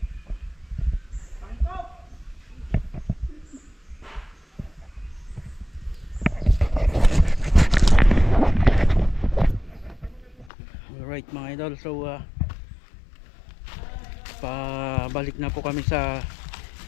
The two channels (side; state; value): right; drops out; at 10.5 s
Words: Alright mga idol, so pabalik na po kami sa